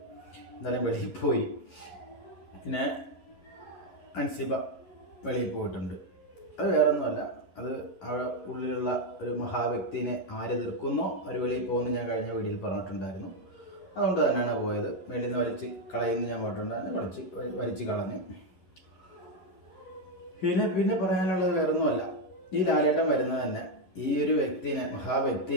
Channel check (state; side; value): late; right; 11 ms